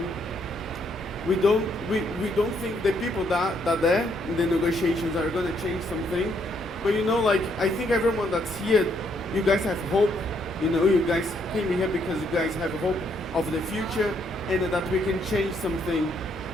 don't think the people that there in the negotiations are going to change something. But you know, like, I think everyone that's here, you guys have hope. You know, you guys came here because you guys have hope of the future, and that we can change something.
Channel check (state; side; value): normal; both; correlation 0.72